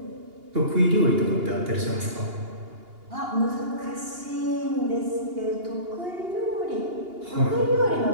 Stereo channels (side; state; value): left; late; 2.8 ms